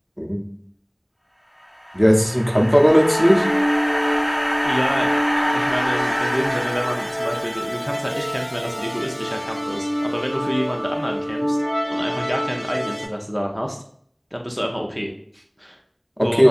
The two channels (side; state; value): both; identical; correlation 1.00